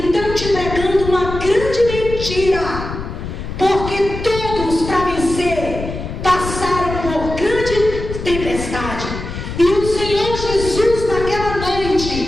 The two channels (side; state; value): left; noise; rumble, 7 dB below the sound